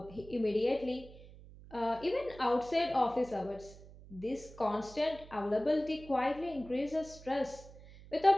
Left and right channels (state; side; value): noise; right; hum, 19 dB below the sound